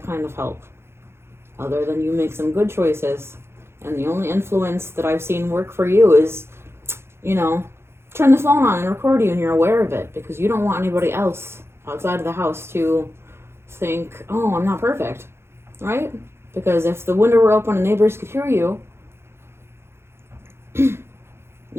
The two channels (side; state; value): left; late; 0.12 ms